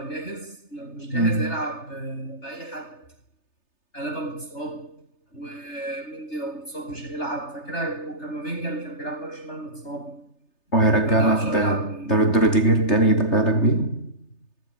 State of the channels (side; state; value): right; late; 3.3 ms